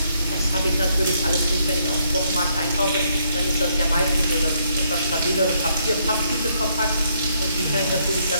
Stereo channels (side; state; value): both; inverted; correlation -0.72